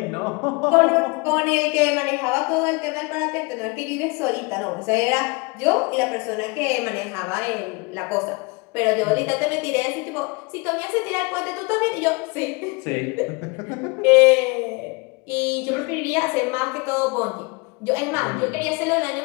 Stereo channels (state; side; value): quieter; right; 28.5 dB